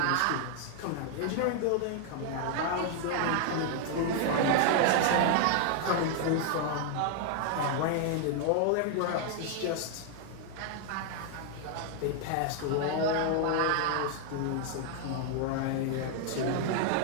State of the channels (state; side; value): different; both; correlation 0.00